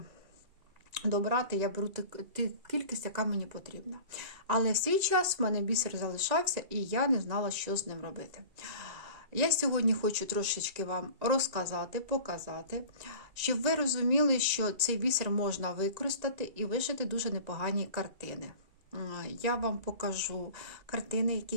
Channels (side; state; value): left; late; 1.9 ms